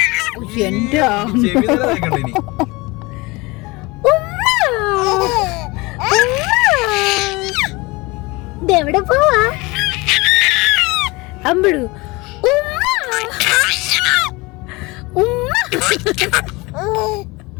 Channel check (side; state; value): right; quieter; 24.0 dB